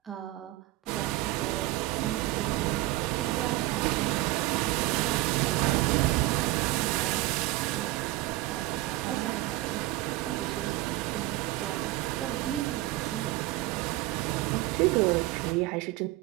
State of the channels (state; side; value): quieter; left; 17.7 dB